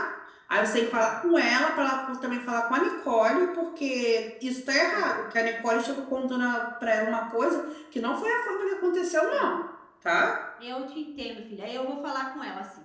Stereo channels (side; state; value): both; identical; correlation 1.00